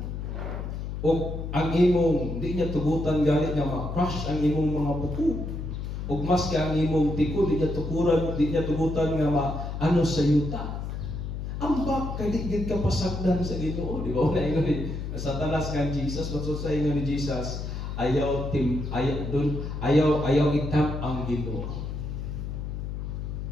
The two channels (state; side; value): noise; left; hum, 5 dB below the sound